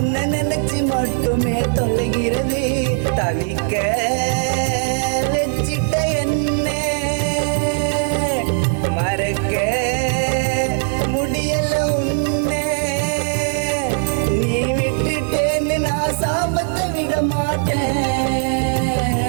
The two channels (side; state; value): left; silent; 60 dB below the other